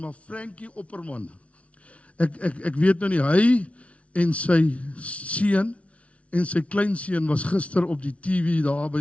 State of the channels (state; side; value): late; right; 0.063 ms